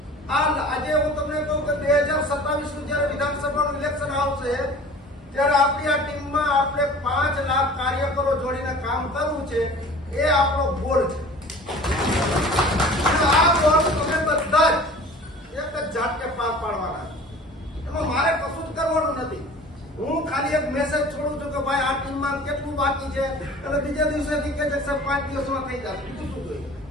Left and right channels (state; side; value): normal; both; correlation 0.43